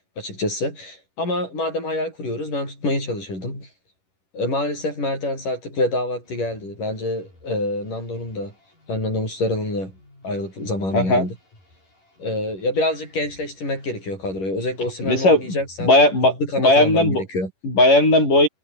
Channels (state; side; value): late; right; 11 ms